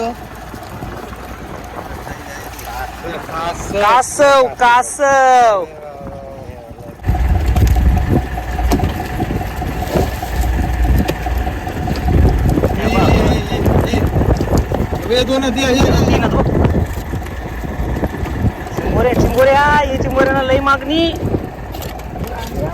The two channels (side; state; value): both; identical; correlation 1.00